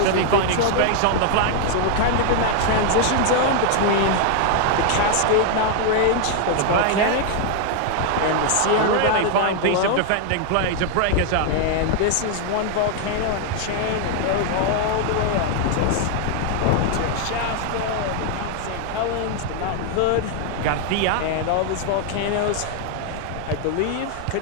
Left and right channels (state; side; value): different; both; correlation 0.00